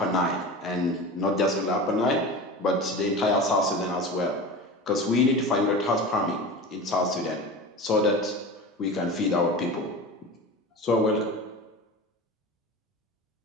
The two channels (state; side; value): normal; both; correlation 0.31